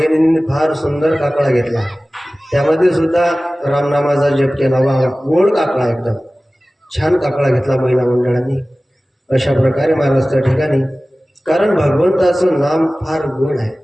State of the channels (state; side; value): normal; both; correlation 0.97